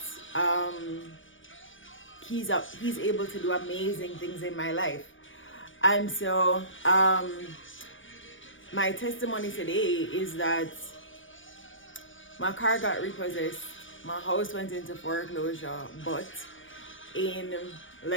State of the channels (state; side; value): late; right; 0.56 ms